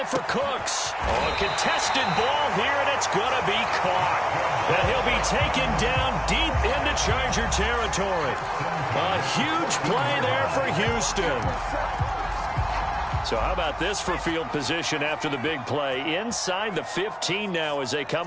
for Cooks. Oh, a contested ball here, and it's going to be caught. And he'll be taken down deep into Charger territory. A huge play there for Houston. So how about this for field position after the big play? Inside the 15 now as they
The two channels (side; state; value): both; identical; correlation 1.00